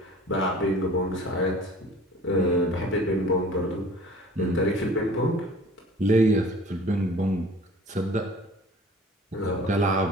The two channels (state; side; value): normal; both; correlation 0.46